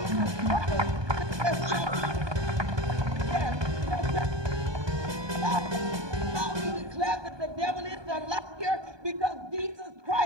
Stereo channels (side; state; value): left; late; 1.2 ms